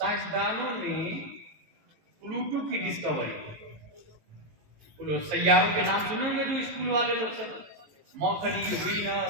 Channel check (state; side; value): late; left; 18 ms